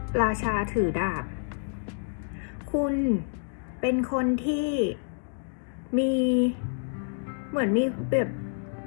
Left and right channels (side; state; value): right; silent; digital silence